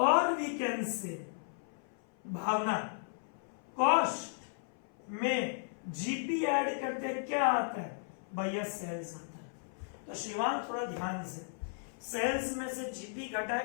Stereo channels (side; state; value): right; silent; 54 dB below the other